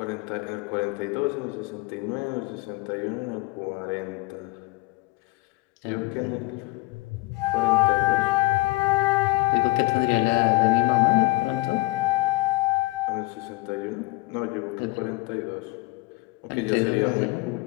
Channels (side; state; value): right; quieter; 22.7 dB